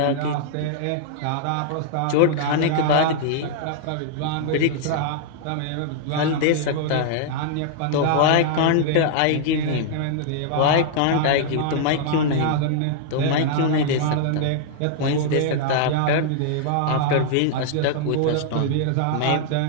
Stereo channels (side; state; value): both; different; correlation -0.01